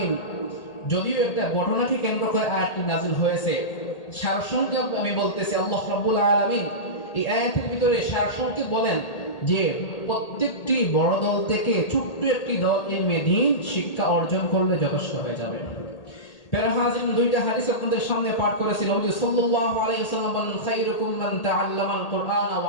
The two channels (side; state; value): right; late; 1.8 ms